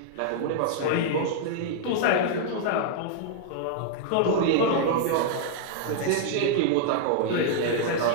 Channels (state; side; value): different; both; correlation -0.01